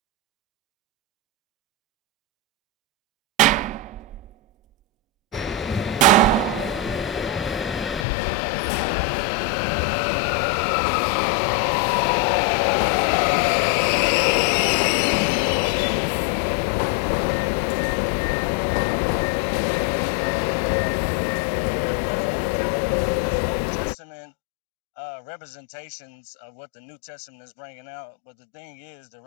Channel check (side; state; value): right; drops out; at 8.1 s